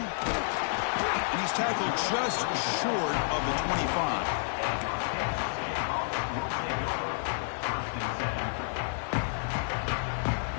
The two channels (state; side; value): silent; right; digital silence